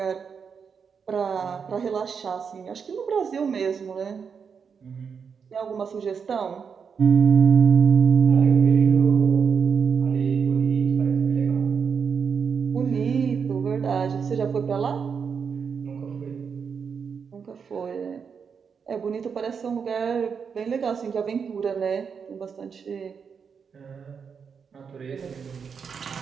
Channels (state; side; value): quieter; left; 6.3 dB